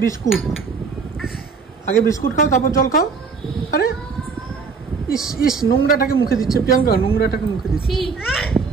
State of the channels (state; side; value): quieter; left; 5.2 dB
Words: বিস্কুট, আগে বিস্কুট খাও, তারপর জল খাও। আরে ইস ইস, নোংরাটাকে মুখে দিচ্ছে প্রিয়াঙ্কা, নোংরাটাকে মুখে দিচ্ছে।